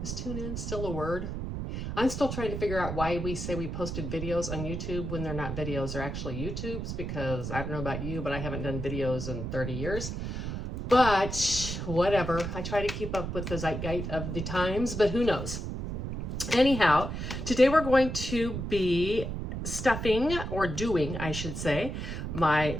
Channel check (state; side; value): noise; right; rumble, 5 dB below the sound